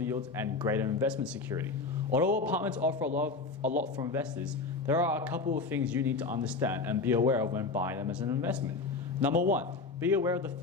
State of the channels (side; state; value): right; quieter; 4.0 dB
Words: yields, and greater investment security. Although apartments offer a lot for investors, there are a couple of things you need to understand and be aware of when buying them as an investment. Number one, be aware of the